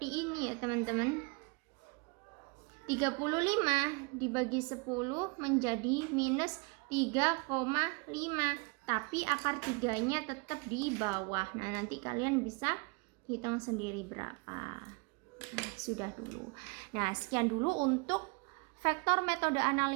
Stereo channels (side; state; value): left; quieter; 30.7 dB